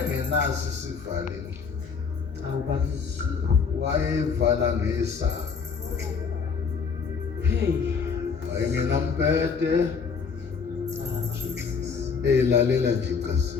isivaleli. Awubakithi. Wayevala ngesaka. Hey. Ayingenampete elalela nje icasi.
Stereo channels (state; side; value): quieter; right; 5.6 dB